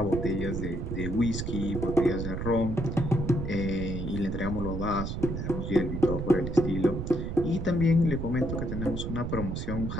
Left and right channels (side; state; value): right; noise; rumble, 4 dB below the sound